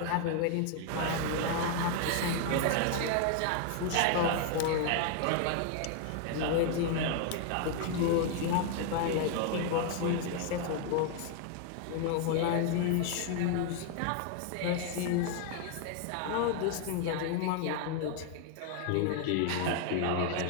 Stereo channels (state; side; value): different; both; correlation 0.00